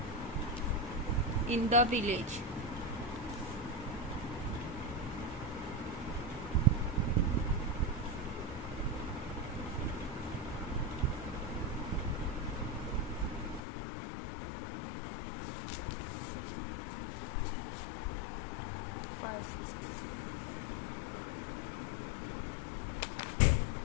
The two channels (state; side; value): drops out; right; at 13.6 s